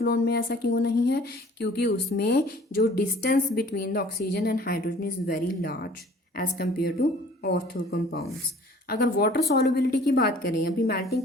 में ऐसा क्यों नहीं है, क्योंकि उसमें जो distance between the oxygen and hydrogen is very large as compare to ortho compounds. अगर वाटर सॉल्युबिलिटी की बात करें, अभी मेल्टिंग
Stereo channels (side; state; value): both; normal; correlation 0.51